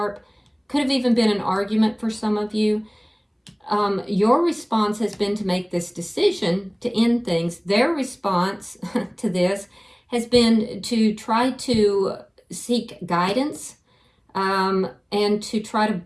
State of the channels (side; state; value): both; identical; correlation 1.00